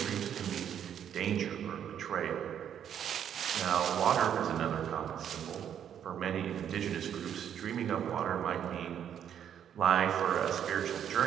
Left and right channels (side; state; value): left; quieter; 9.2 dB